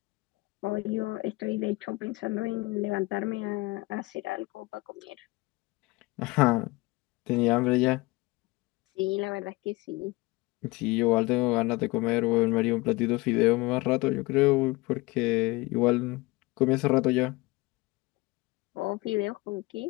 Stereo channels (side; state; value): right; quieter; 22.8 dB